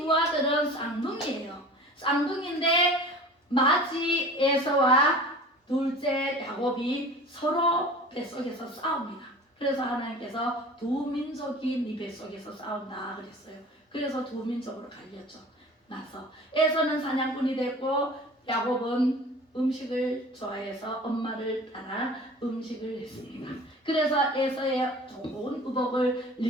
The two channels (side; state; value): both; normal; correlation 0.41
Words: 아들은 쌍둥이에요. 쌍둥이인데 맏이 에서와 둘째 야곱이 서로 뱃속에서 싸웁니다. 그래서 하나님께서 두 민족이 네 뱃속에서 싸운다 그랬어요. 그래서 두 민족으로 갈렸죠. 나서 에서는 사냥꾼이 됐고 야곱은 음식을 좋아해서 엄마를 따라 음식을 했습니다. 그래서 에서의 좋은 의복을